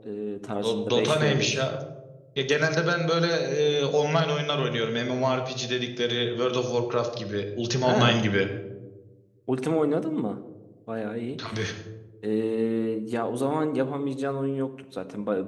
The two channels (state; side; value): identical; both; correlation 1.00